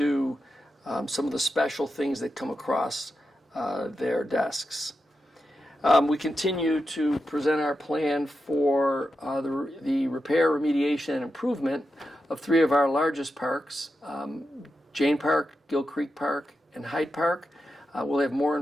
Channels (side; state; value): both; normal; correlation 0.88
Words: some of the special things that come across their desks. We continue to present our plan for the repair, remediation, and improvement of three of our largest parks, Jane Park, Gill Creek Park, and Hyde Park. We'll have more